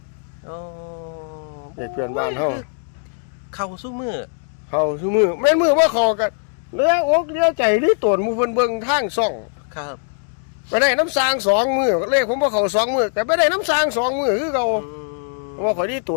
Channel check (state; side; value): silent; right; digital silence